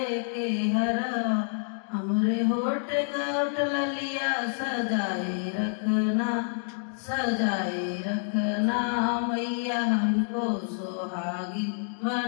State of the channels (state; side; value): silent; right; 59 dB below the other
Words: के हरवा, हमरे होठ गठ ललिया सजाए रखना, सजाए रखना मैया हमको सुहागिन